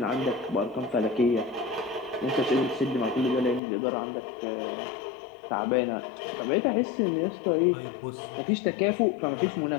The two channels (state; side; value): drops out; right; at 3.6 s